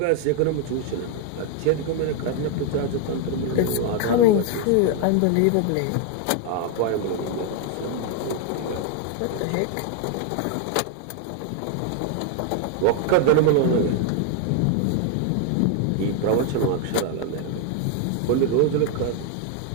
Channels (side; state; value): both; different; correlation 0.00